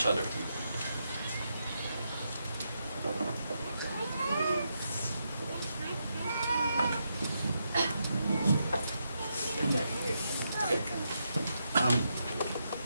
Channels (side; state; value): both; inverted; correlation -0.82